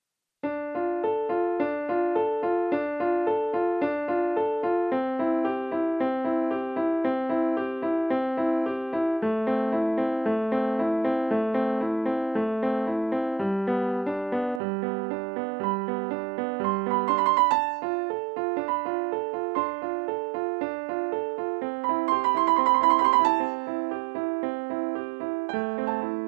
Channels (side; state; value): left; drops out; at 14.6 s